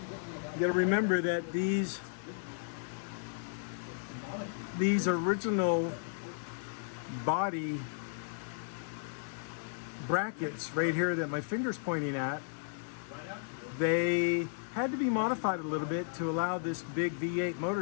you got to remember that these original body brackets right here that my finger's pointing at, they had to be modified a little bit to allow this big V8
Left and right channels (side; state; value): right; silent; digital silence